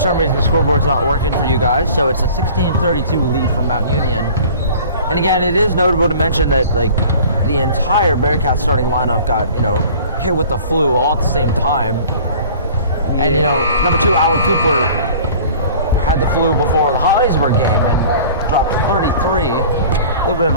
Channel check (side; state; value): both; inverted; correlation -0.46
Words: reason the scoreboard's not working for you guys, so it's a 16-32 lead for Mount Union. And again, it is notable to mention that like the entire Bearcats starting lineup got, you know, hit with the flu all at the same time. And you know, number 2, Alan Cooper, had the flu before the Hollidaysburg game and dropped 33. A little bit of